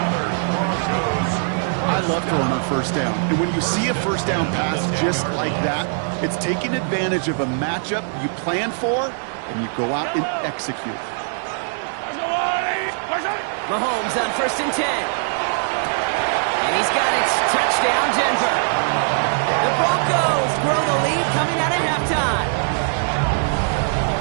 I love throwing on 1st down. And when you see a 1st down pass just like that, it's taking advantage of a matchup you plan for, and you go out and execute. Mahomes on 1st and 10. And he's got it. Touchdown, Denver. The Broncos grow the lead coming out at halftime.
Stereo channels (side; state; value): left; silent; 65 dB below the other